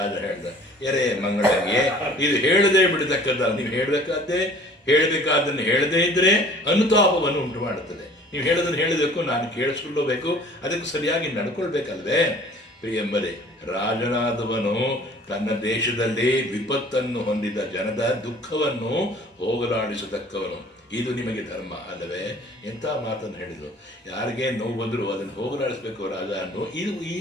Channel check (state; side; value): normal; both; correlation 0.51